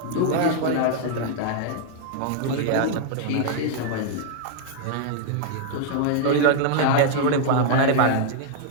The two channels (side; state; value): both; different; correlation 0.00